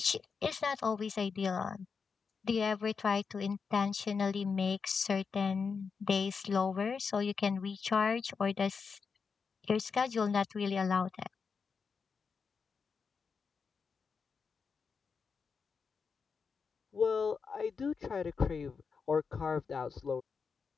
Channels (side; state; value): right; quieter; 5.5 dB